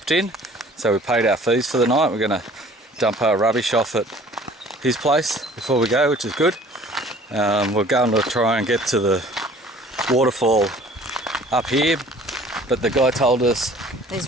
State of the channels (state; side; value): normal; both; correlation 0.51